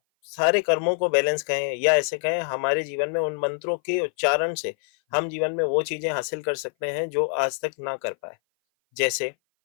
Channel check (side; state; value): right; silent; 57 dB below the other